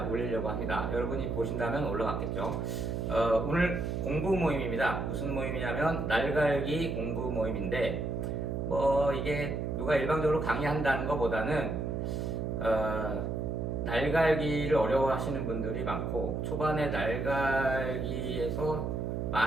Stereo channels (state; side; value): noise; right; hum, 2 dB below the sound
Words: 올리려고 합니다. 여러분이 보신다면 올라갔겠죠. 오늘 공부 모임입니다. 무슨 모임이냐면 날갈기 공부 모임인데, 뭐 이게 누가 일방적으로 강의한다는 것보다는 날갈기를 어려워하시는 분들이 많고 초반에 날갈기에서